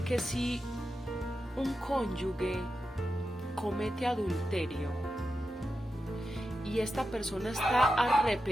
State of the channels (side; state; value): both; normal; correlation 0.89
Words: que si un cónyuge comete adulterio y esta persona está